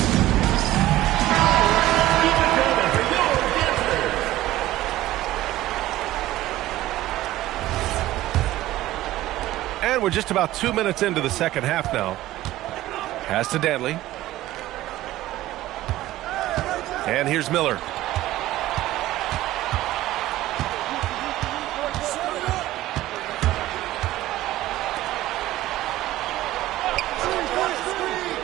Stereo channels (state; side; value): quieter; left; 15.6 dB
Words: And we're just about 2 minutes into the second half now. Pass to Danley. And here's Miller.